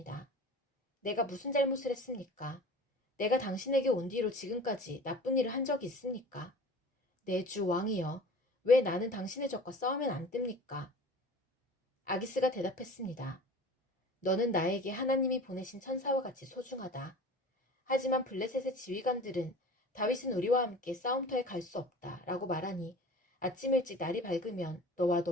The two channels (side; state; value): both; normal; correlation 0.40